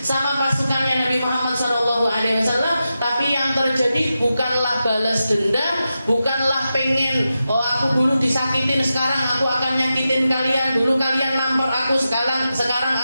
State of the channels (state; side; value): inverted; both; correlation -0.90